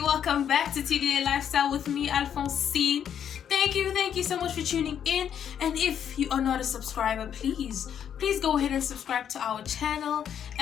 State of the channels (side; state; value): right; quieter; 8.9 dB